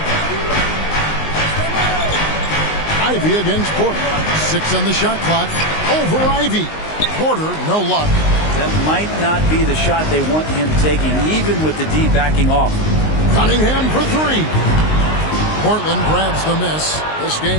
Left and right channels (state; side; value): late; right; 19 ms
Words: Ivey against Porter. 6 on the shot clock. Over Ivey. Porter, no luck. That might not be the shot they want him taking, even with the D backing off. Cunningham for three. Portland grabs the miss. This